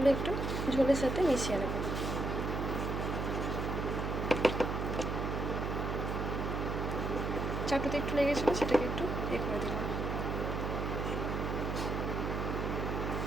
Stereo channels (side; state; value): right; noise; hum, 1 dB below the sound